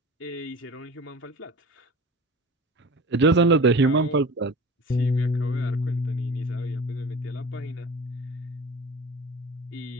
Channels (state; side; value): normal; both; correlation 0.36